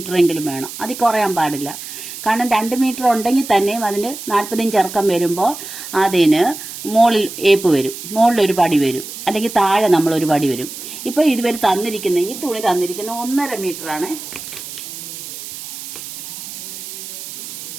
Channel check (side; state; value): right; noise; hiss, 10 dB below the sound